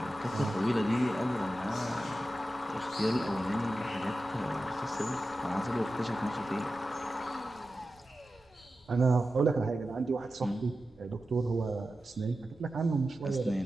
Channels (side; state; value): both; normal; correlation 0.92